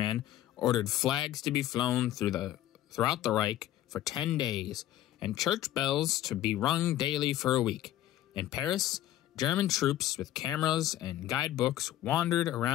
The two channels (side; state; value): right; quieter; 13.2 dB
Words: ordered flags to be flown throughout the Reich for 10 days, and church bells to be rung daily for a week. In Paris, German troops with cameras and guidebooks wandered